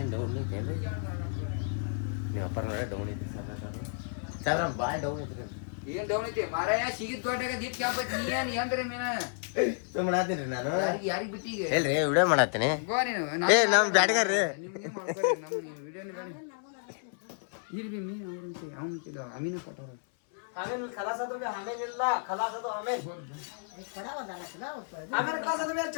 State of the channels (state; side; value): silent; right; 57 dB below the other